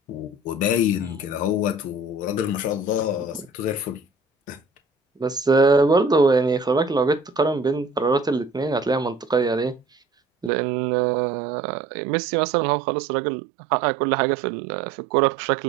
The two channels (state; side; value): drops out; left; at 10.5 s